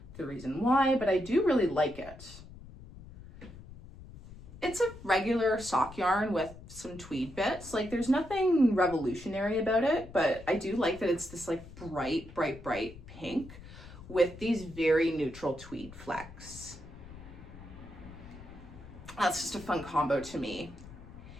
the reason why, but I do really like it. It's a regular sock yarn with some tweed bits. Like, there's nothing revolutionary about it, but I do like that it's this like bright, bright, bright pink with these very neutral tweed flecks. That's just a fun combo to me.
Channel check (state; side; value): noise; left; rumble, 16 dB below the sound